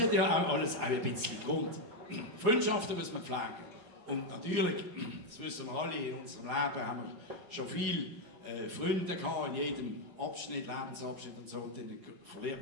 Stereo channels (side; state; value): left; late; 4.5 ms